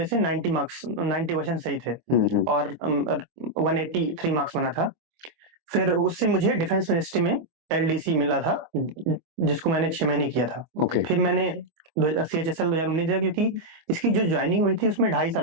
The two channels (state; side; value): late; left; 24 ms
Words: से 90 मार्क्स, 90 क्वेश्चन सही थे और 183 मार्क्स बना था। फिर उससे मुझे डिफेंस मिनिस्ट्री में एलडीसी मिला था, जिसको मैंने 6 महीने किया था। ओके। फिर मैंने सीएचएसएल 2019 दिया, क्योंकि इसकी जो ज्वाइनिंग हुई थी उसमें 2.5